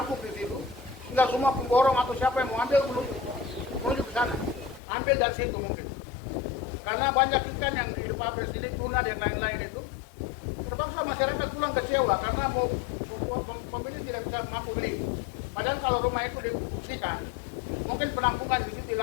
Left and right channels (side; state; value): right; drops out; at 4.8 s